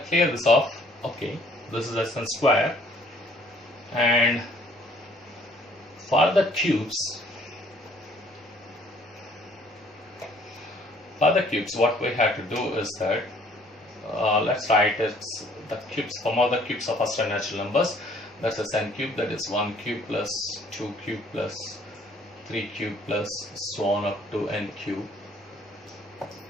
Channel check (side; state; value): both; normal; correlation 0.59